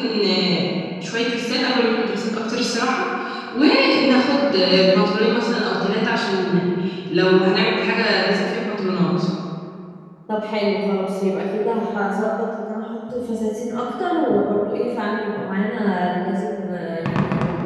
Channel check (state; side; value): identical; both; correlation 1.00